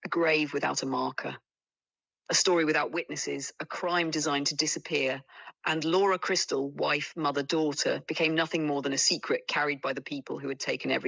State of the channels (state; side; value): identical; both; correlation 1.00